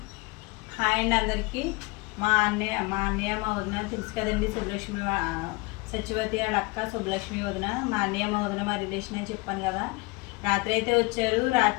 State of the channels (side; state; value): right; quieter; 25.8 dB